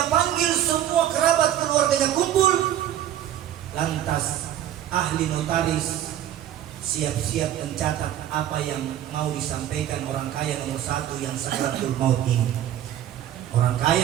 panggil semua kerabat keluarganya kumpul. Lantas ahli notaris siap-siap mencatat apa yang mau disampaikan orang kaya nomor satu yang sakaratul maut ini. Orang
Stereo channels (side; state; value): left; quieter; 11.6 dB